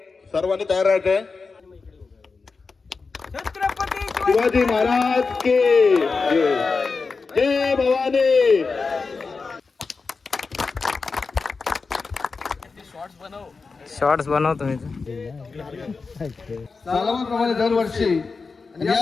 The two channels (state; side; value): quieter; right; 4.5 dB